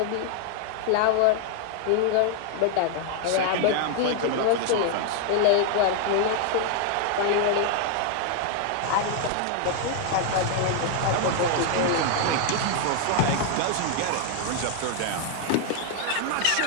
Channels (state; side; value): different; both; correlation 0.00